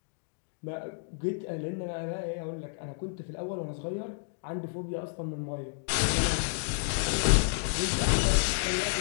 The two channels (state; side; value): silent; right; digital silence